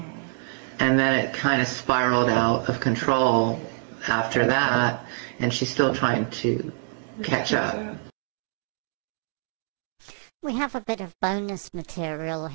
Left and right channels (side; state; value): left; silent; 61 dB below the other